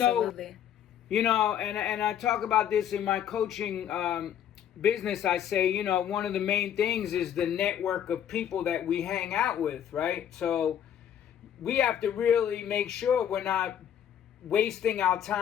And I talk about this in my coaching business. I say, one of the main things is the network of people that we hang out with, right? So we have to really make sure we're not wasting our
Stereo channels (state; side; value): quieter; right; 9.7 dB